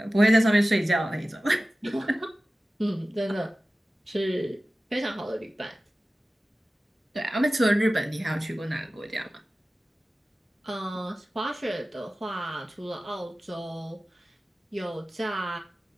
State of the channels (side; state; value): both; normal; correlation 0.96